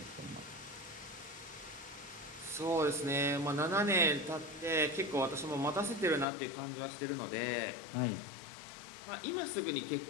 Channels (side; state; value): right; drops out; at 6.2 s